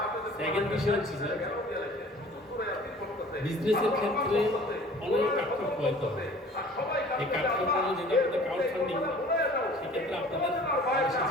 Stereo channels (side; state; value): both; normal; correlation 0.48